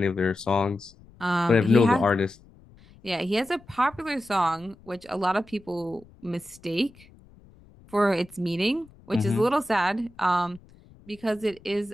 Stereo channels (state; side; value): noise; left; rumble, 25 dB below the sound